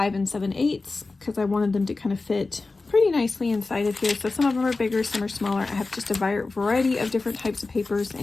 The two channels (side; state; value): right; quieter; 3.6 dB